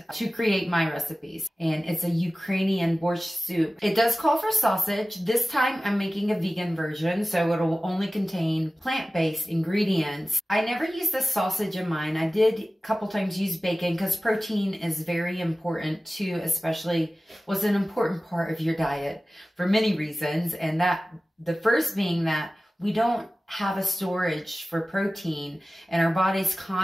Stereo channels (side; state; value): both; normal; correlation 0.96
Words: to create my recipes. And it's a Ukrainian borscht soup. It does call for sausage. This time I'm making a vegan version, so it'll only contain plant-based ingredients. I never used the sausage in mine. I did a couple times use bacon because protein is very important too, especially was an important part of your diet for many reasons. And the first being that we don't have a storage for protein, and our body's